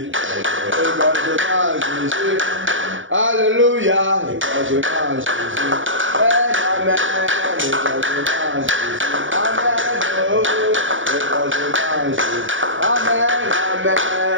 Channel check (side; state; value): left; late; 0.57 ms